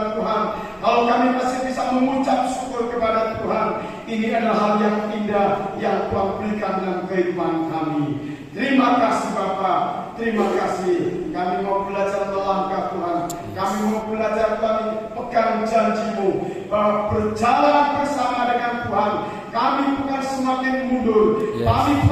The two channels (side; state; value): both; identical; correlation 1.00